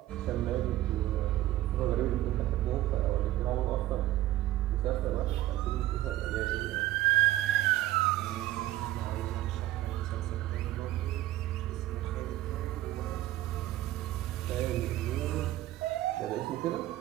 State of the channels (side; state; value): left; quieter; 15.1 dB